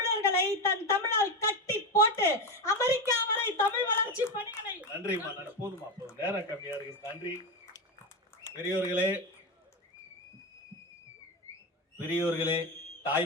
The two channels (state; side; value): normal; both; correlation 0.15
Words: தன் தமிழால் கட்டி போட்டு அமெரிக்கா வரை தமிழ் வளர்ச்சி பணிகளை. நன்றிமா, போதுமா, போதும், நேரம் கம்மியா இருக்கு. நன்றி. பெரியோர்களே, பெரியோர்களே,